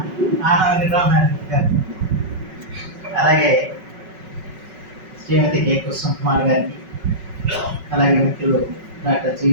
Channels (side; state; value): left; late; 5.4 ms